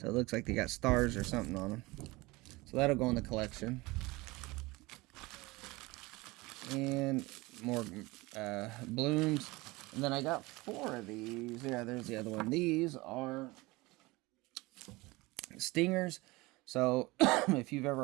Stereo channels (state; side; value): quieter; left; 22.3 dB